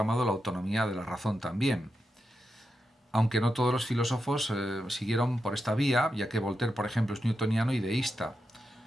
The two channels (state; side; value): normal; both; correlation 0.88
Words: la autonomía de la razón también. Aunque no todos los filósofos siguieron por esta vía, ya que Voltaire, por ejemplo, es newtoniano y deísta.